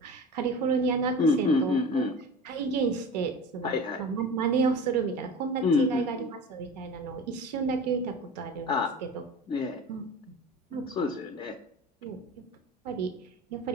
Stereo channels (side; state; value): both; normal; correlation 0.35